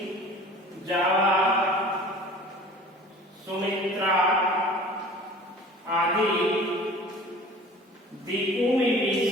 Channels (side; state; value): both; normal; correlation 0.44